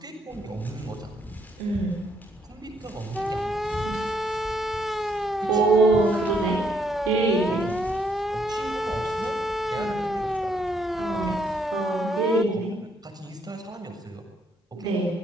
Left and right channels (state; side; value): normal; both; correlation 0.72